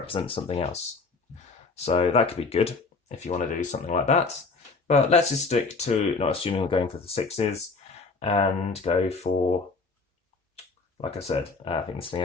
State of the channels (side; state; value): right; quieter; 4.1 dB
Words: something else. So that could be good if you want to do something like that. But let's just stick to, not assuming we're going for the 6s, and go for, like I said, I think this thing